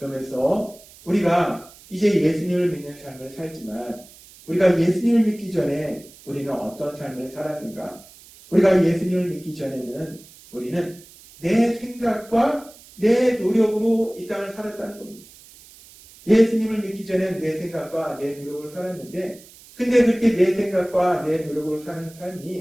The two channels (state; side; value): noise; right; hiss, 22 dB below the sound